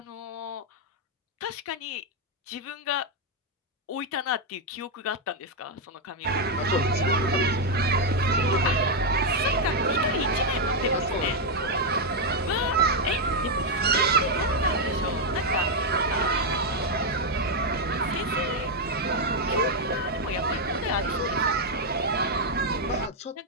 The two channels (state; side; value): normal; both; correlation 0.01